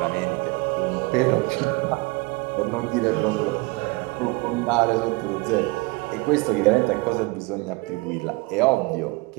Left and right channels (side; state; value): left; quieter; 25.7 dB